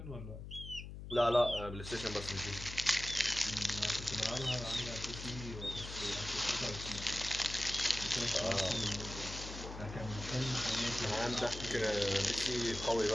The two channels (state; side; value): noise; left; hum, 10 dB below the sound